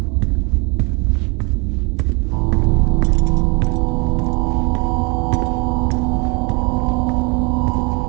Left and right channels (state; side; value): quieter; left; 30.9 dB